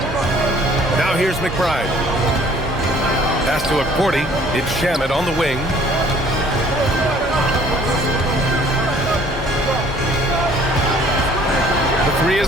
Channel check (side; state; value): both; normal; correlation 0.56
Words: Now here's McBride. Pass to Porty. It's Shamet on the wing. The 3